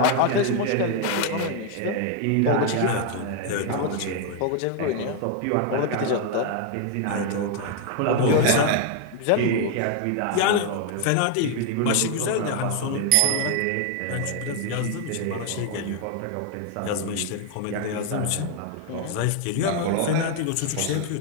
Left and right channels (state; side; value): different; both; correlation 0.00